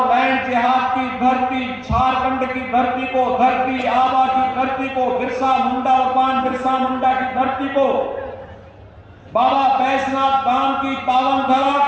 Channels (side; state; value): both; identical; correlation 1.00